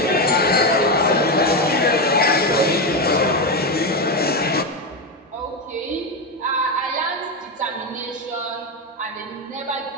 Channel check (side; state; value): both; normal; correlation 0.11